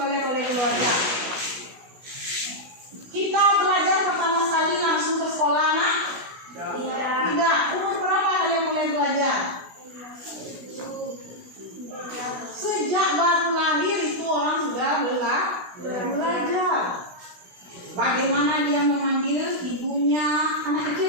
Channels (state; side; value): late; left; 16 ms